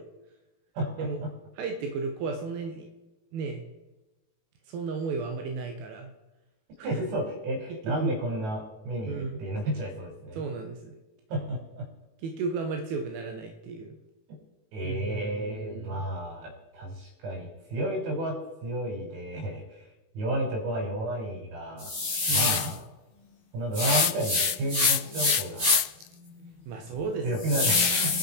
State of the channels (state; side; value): late; left; 18 ms